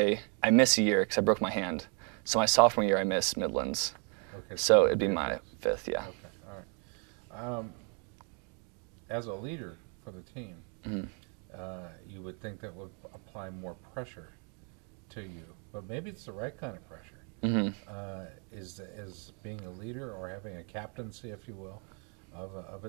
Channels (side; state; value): left; quieter; 38.7 dB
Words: missed a year because I broke my hand. So my sophomore year, I missed Midlands. Okay. So it'd be my 5th, yeah. Okay, all right. As a leader for the team, you would think that would apply more pressure to you, but maybe it's the right kind of pressure. Is being a leader or having a captaincy, if you will, of a